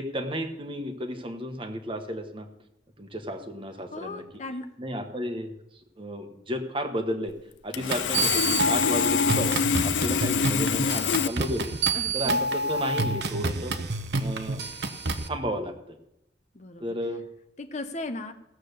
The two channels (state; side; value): normal; both; correlation 0.17